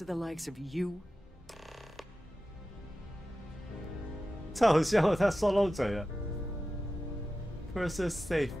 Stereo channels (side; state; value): both; normal; correlation 0.93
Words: the likes of you. 太好笑了，他说漏嘴了。Purser's safe.